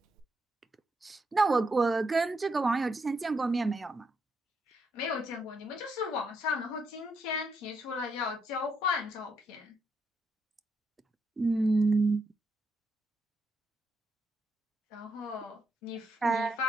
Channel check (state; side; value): normal; both; correlation 0.78